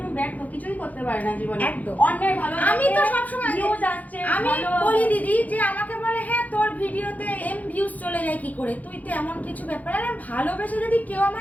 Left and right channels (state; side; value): late; right; 0.078 ms